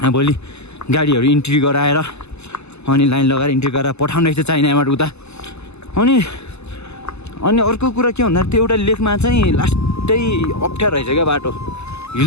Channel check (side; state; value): right; late; 0.80 ms